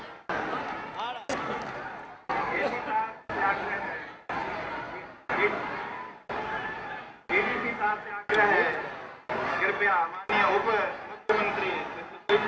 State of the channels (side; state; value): both; identical; correlation 1.00